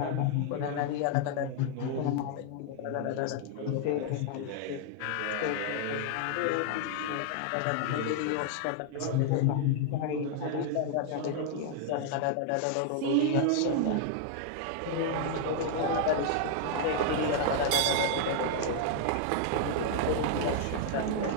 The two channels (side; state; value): both; different; correlation 0.00